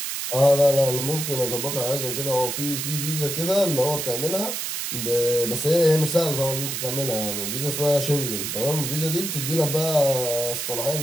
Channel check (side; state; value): right; noise; hiss, 3 dB below the sound